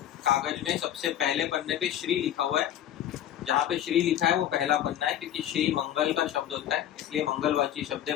कागज में सबसे पहले पन्ने पे श्री लिखा हुआ है। जहाँ पे श्री लिखा है वो पहला पन्ना है, क्योंकि श्री मंगल का शब्द होता है, इसलिए मंगलवाची शब्द है।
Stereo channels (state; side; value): quieter; right; 11.3 dB